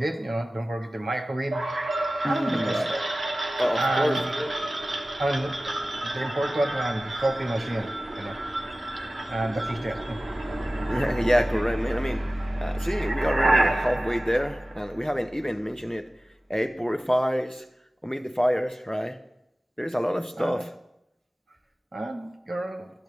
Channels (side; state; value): both; normal; correlation 0.97